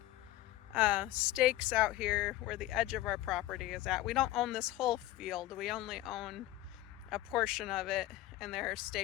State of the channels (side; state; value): right; quieter; 15.9 dB